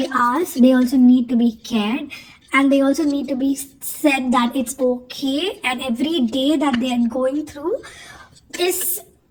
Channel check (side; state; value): both; identical; correlation 1.00